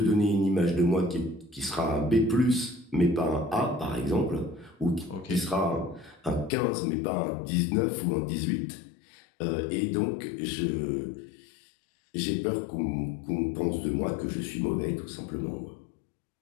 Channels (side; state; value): right; drops out; at 6.5 s